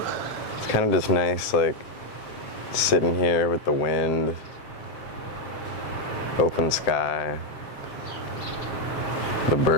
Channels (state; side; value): late; right; 7.4 ms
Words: It's kind of just nice, like, sitting here with the wind, open sky, the